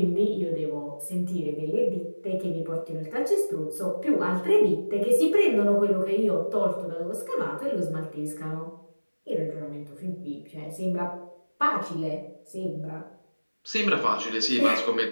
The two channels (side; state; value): both; inverted; correlation -1.00